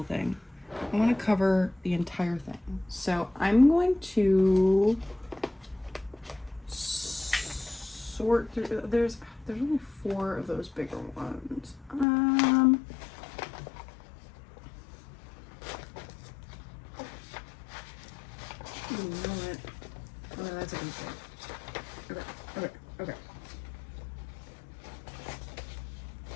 thing. I want to cover the entire thing. So I'm going to sort through. There's only 4 of those bigger ones. You know what? Oh, that's a good thing. Okay.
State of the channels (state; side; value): drops out; right; at 12.1 s